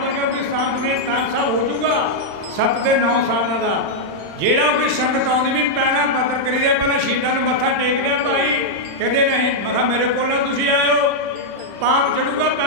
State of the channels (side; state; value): left; late; 35 ms